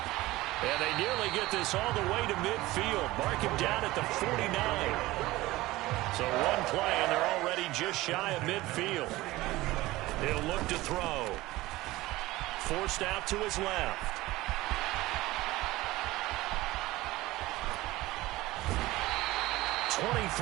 And they nearly get this all the way to midfield. Mark him down at the 49. So one play, and they're already just shy of midfield. He'll look to throw. Forced out to his left.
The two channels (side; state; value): left; quieter; 18.5 dB